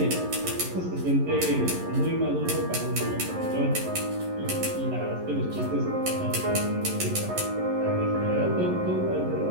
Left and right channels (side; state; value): left; late; 11 ms